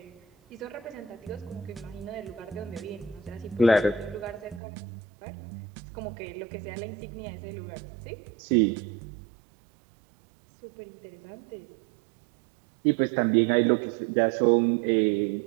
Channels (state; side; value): drops out; left; at 4.6 s